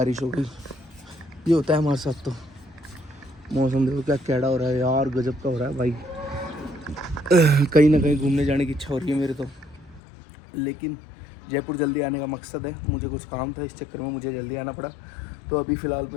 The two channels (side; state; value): right; drops out; at 10.0 s